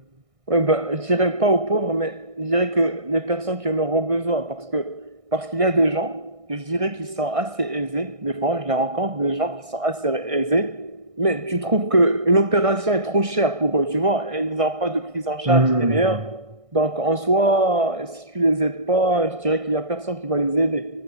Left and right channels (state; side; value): late; left; 1.6 ms